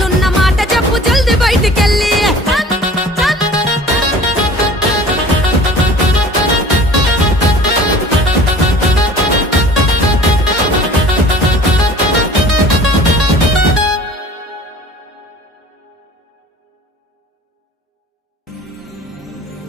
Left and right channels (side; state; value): both; normal; correlation 0.46